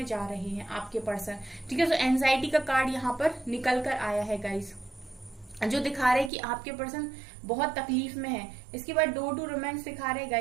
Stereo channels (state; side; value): drops out; left; at 6.3 s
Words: जा रहे हैं आपके पर्सन। ठीक है, तो एंजाइटी का कार्ड यहाँ पर निकल कर आया है गाइस, जो दिखा रहे हैं कि आपके पर्सन बहुत तकलीफ में है। इसके बाद डोर टू रोमांस दिखा रहे हैं